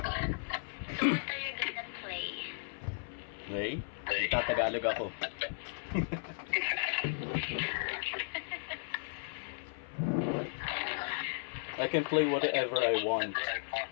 So what are you gonna play? Hey? Tatagalog ako. I can play whatever I want.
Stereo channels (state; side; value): silent; right; 54 dB below the other